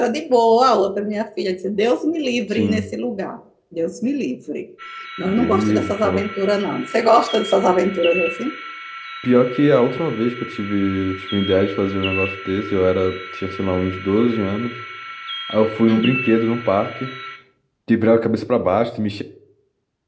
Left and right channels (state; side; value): identical; both; correlation 1.00